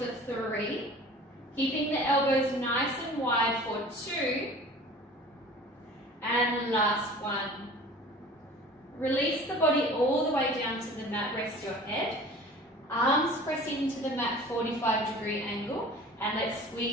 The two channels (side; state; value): both; normal; correlation 0.43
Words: 3. Keeping the elbows nice and wide for 2. And last 1. Release the body all the way down to the mat, rest your head. Arms press into the mat, 45-degree angle, and let's